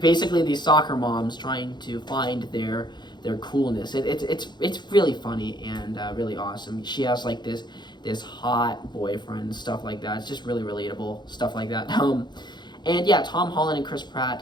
these soccer moms trying to find their coolness. It's really funny and really awesome. She has like this hot boyfriend, stuff like that. It's just really relatable, stuff like that. And yeah, Tom Holland and Chris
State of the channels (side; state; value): right; late; 0.21 ms